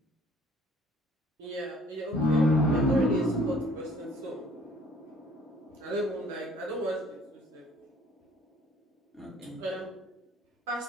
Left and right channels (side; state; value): both; normal; correlation 0.56